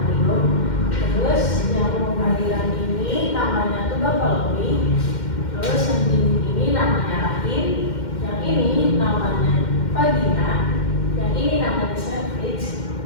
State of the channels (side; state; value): right; late; 2.1 ms